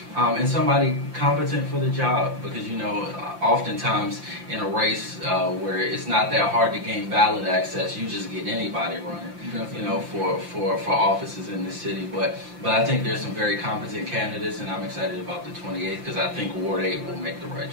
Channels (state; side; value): late; left; 5.8 ms